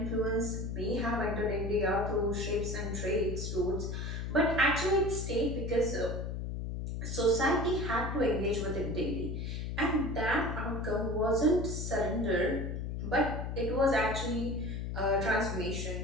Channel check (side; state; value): left; noise; hum, 4 dB below the sound